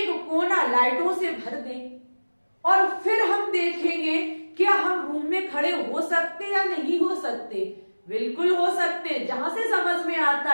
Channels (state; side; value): inverted; both; correlation -1.00